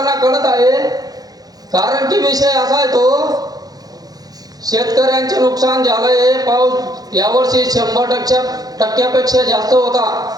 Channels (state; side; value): late; left; 0.19 ms